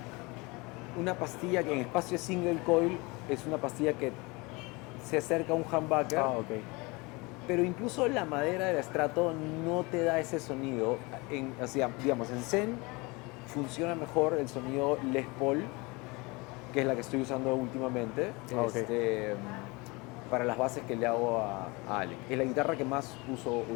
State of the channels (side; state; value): right; quieter; 25.8 dB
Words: una pastilla que en espacio single coil es una pastilla que se acerca a un humbucker, Ah, ok. pero incluso la madera del Strato no te da ese sonido. O sea, digamos, en Zen funciona mejor el sonido Les Paul, que es la que estoy usando últimamente, Ok. para las bases que le hago a Alec. Es la guitarra que más uso